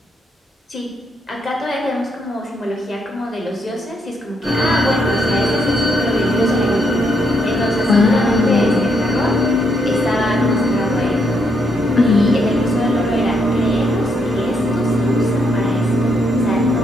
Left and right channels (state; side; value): normal; both; correlation 0.76